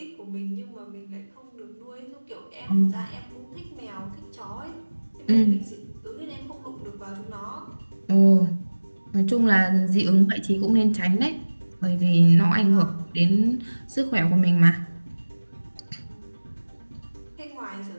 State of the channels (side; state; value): both; inverted; correlation -1.00